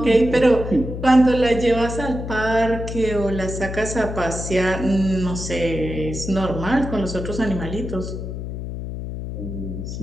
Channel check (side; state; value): left; noise; hum, 7 dB below the sound